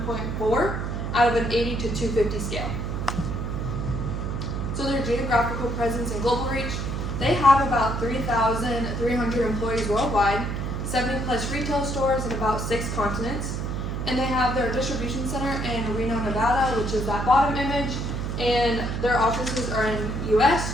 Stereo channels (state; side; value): noise; right; hum, 3 dB below the sound